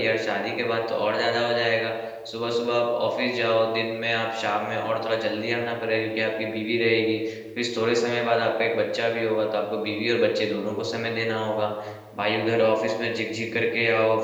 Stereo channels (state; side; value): identical; both; correlation 1.00